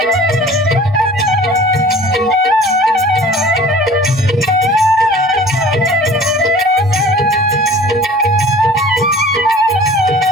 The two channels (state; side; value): normal; both; correlation 0.46